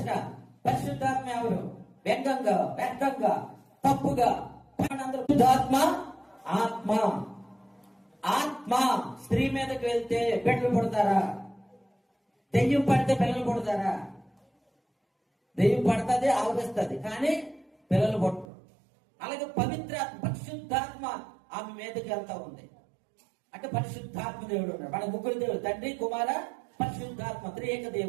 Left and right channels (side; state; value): left; drops out; at 18.4 s